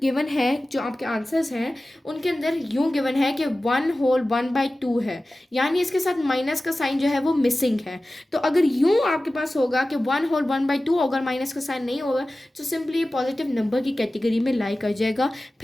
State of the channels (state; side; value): normal; both; correlation 0.96